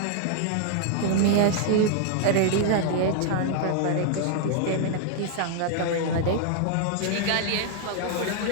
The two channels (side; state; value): both; different; correlation 0.00